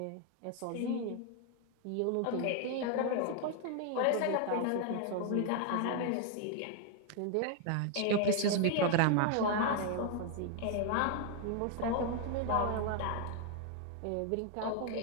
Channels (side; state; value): both; different; correlation 0.00